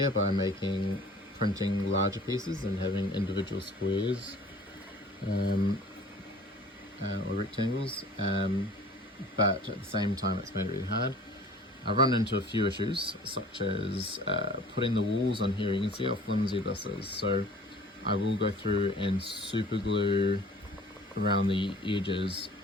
by printing larger pieces and having individual squares or rectangles, but at the same time it's made it really hard. I've run into a few issues, such as putting the walls on here. You can see how flimsy this is, so I will go through and super glue around the edges,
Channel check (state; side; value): normal; both; correlation 0.47